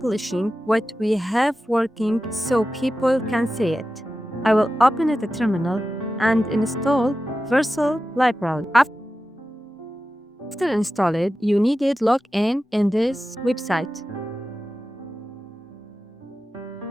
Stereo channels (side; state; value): both; normal; correlation 0.93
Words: what we have working so people can see it. I will open it a terminal and install vercel library. After install it, you needed log in this website.